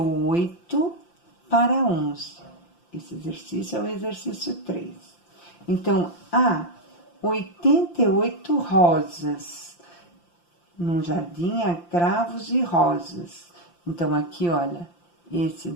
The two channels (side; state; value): right; late; 5.8 ms